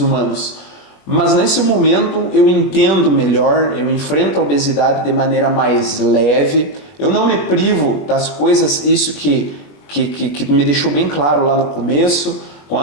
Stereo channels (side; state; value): right; late; 21 ms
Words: Mas nesse momento eu entendo melhor, eu enfrento a obesidade de maneira mais leve, eu não me privo das coisas, isso que me deixou bem claro lá no começo, com